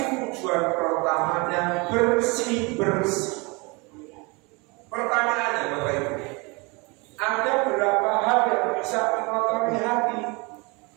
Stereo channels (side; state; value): left; quieter; 28.1 dB